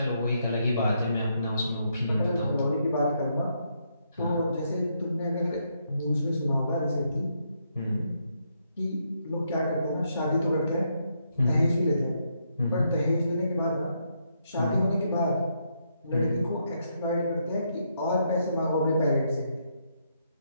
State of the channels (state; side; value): inverted; both; correlation -0.77